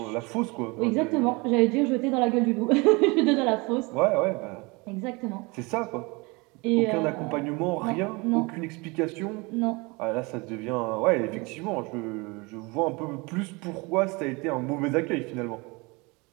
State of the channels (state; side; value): quieter; left; 26.6 dB